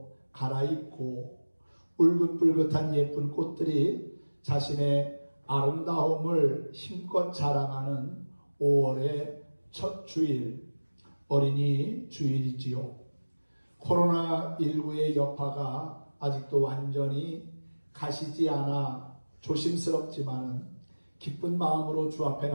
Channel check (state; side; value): inverted; both; correlation -1.00